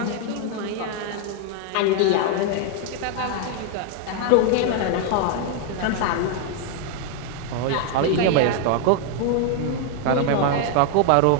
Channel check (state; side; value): different; both; correlation 0.01